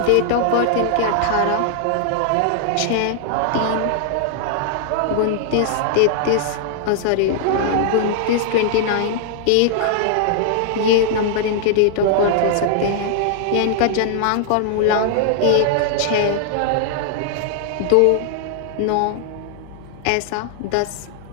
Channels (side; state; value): both; different; correlation -0.01